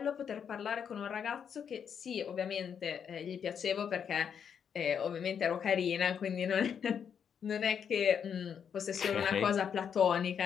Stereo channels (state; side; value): quieter; right; 7.6 dB